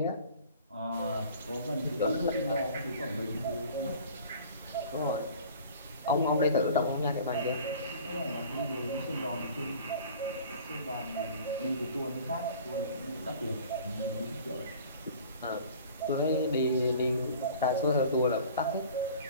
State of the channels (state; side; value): inverted; both; correlation -0.45